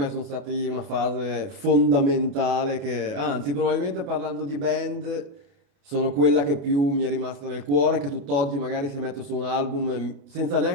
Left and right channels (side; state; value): left; late; 28 ms